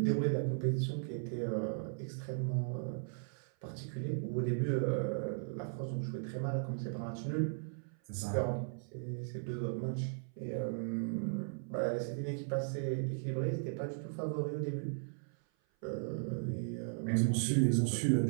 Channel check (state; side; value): silent; left; 53 dB below the other